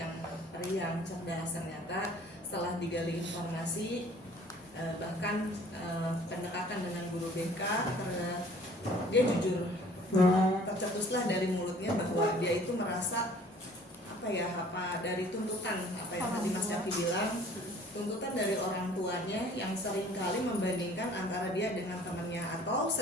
periang, cerdas. Ternyata setelah digali informasi, bahkan pendekatan dengan guru BK, dia jujur, tercetuslah dari mulutnya bahwa dia itu merasa apa dari tuntutan apa yang tadi Mas Yafi bilang, tuntutan dari orang tuanya yang seringkali membandingkan antara dia dengan temannya, atau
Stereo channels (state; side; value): normal; both; correlation 0.53